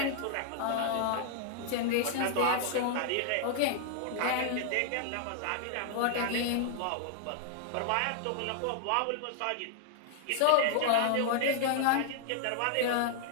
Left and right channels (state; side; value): different; both; correlation 0.00